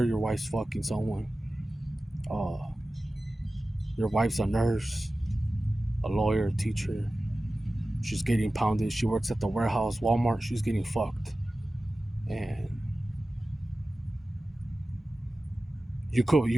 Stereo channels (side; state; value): both; normal; correlation 0.95